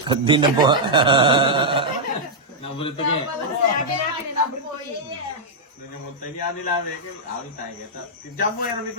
Di na bu... Nabulit ka eh. Sabi natin na number 4. Doon yung mutay niya nila, Mekil. Awin tayo kita. Diyan mo, yan, ko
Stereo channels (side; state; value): both; normal; correlation -0.06